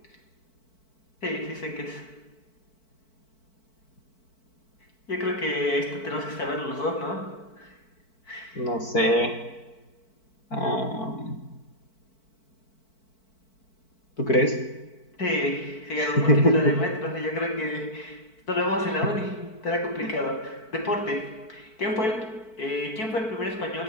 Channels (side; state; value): right; late; 4.5 ms